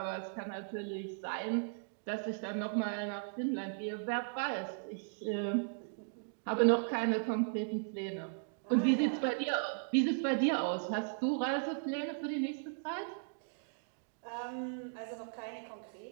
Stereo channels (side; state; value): left; silent; digital silence